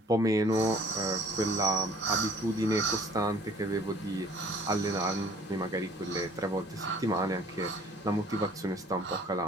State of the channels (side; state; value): both; normal; correlation 0.53